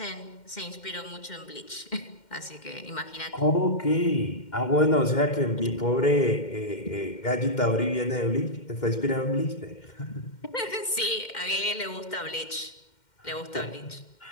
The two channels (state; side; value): late; right; 2.1 ms